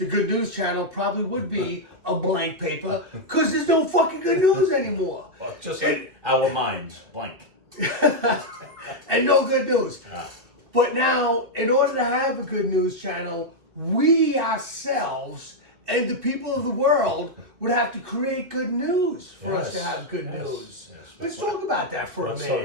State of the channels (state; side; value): late; left; 2.6 ms